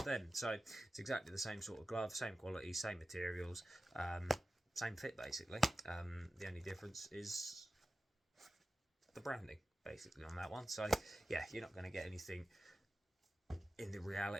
them. So it's exactly the same sort of glove, same quality, same materials, same fit basically. The only difference is the branding basically on that one. So yeah, you're not going to get anything in the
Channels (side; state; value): both; normal; correlation 0.95